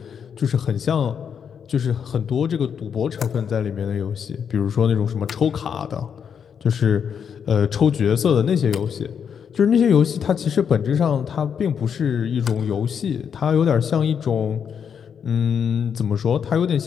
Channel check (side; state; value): right; quieter; 7.4 dB